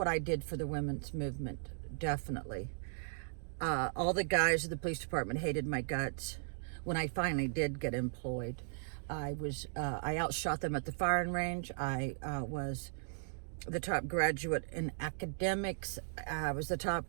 I did for the women's movement, definitely. All the guys at the police department hated my guts. When I finally did get employed, I outshot them at the firing range. I was the top graduate in academics. I was the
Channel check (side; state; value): left; silent; digital silence